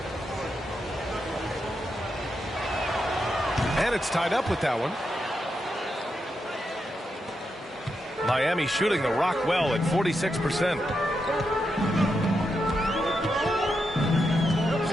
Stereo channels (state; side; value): normal; both; correlation 0.85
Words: And it's tied up with that one. Miami shooting the rock well at 46%.